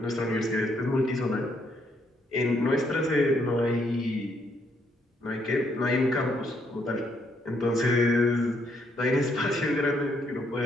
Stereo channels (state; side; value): normal; both; correlation 0.73